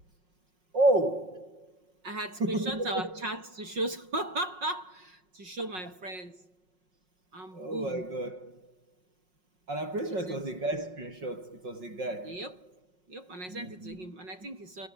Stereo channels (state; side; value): late; left; 5.5 ms